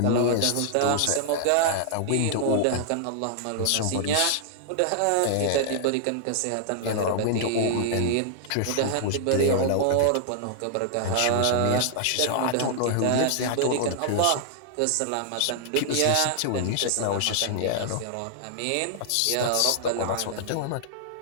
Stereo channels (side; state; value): both; different; correlation -0.01